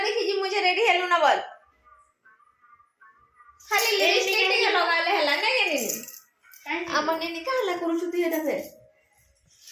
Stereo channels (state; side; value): identical; both; correlation 1.00